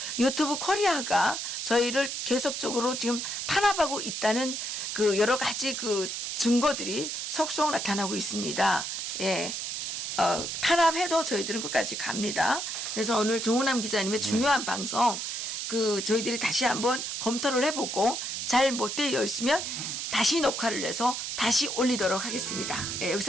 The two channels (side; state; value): right; noise; hiss, 4 dB below the sound